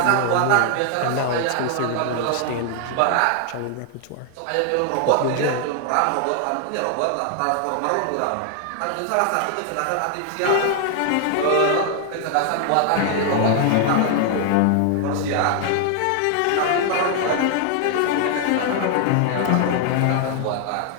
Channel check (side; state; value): both; different; correlation 0.00